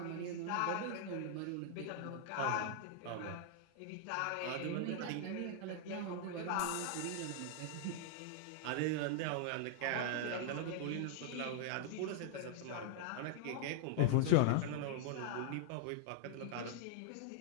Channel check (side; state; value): both; different; correlation -0.01